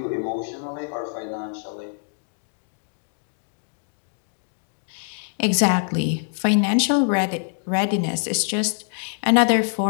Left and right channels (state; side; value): silent; right; 62 dB below the other